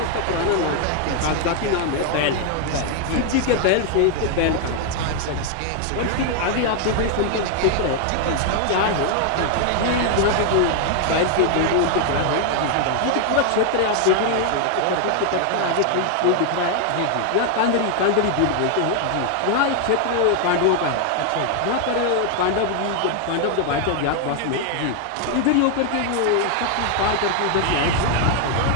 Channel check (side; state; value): both; different; correlation 0.00